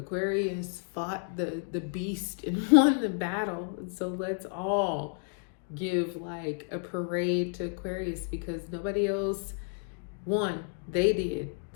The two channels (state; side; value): silent; right; 57 dB below the other